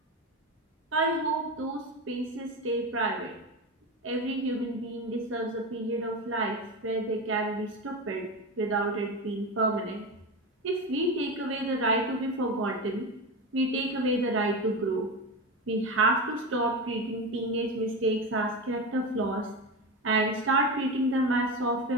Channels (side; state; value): both; normal; correlation 0.20